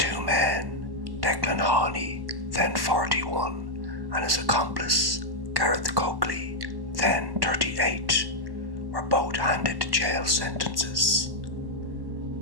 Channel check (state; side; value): late; left; 1.1 ms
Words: men, Declan Haughney, then 41, and his accomplice, Gareth Coakley, then 38, were both handed jail sentences.